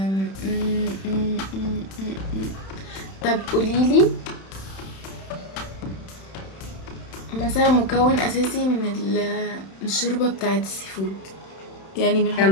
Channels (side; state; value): right; late; 31 ms